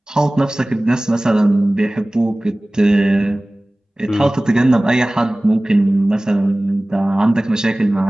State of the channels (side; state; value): both; normal; correlation 0.98